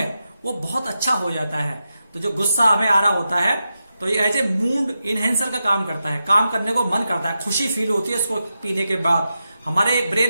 वो बहुत अच्छा हो जाता है। तो जो गुस्सा हमें आ रहा होता है तो ये एज ए मूड इनहेंसर का काम करता है, काम करने को मन करता है, खुशी फील होती है इसको पीने के बाद। हमारे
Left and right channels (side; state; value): both; inverted; correlation -0.89